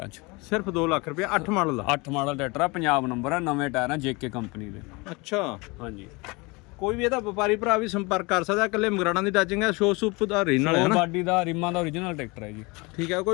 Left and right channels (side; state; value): right; quieter; 26.2 dB